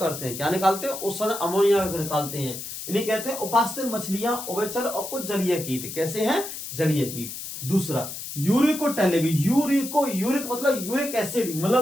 हैं। क्या निकालते हैं? उत्सर्जन अमोनिया का निकालते हैं। इन्हें कहते हैं उपास्तिल मछलियां, उभयचर और कुछ जलीय कीट। कैसे हैं? जलीय कीट। दूसरा यूरिकोटेलिक, यूरिक मतलब यूरिक एसिड,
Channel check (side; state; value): left; noise; hiss, 8 dB below the sound